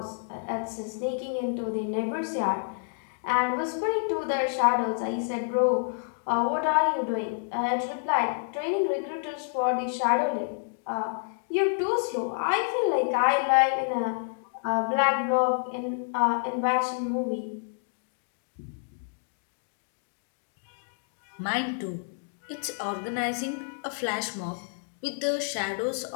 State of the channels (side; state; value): right; silent; digital silence